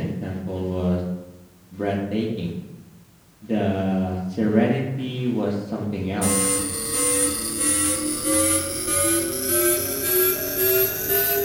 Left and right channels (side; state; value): both; identical; correlation 1.00